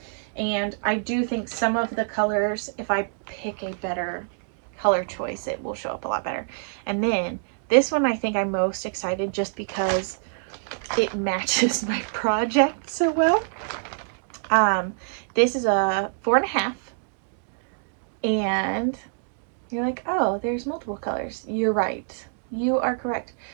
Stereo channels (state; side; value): silent; left; digital silence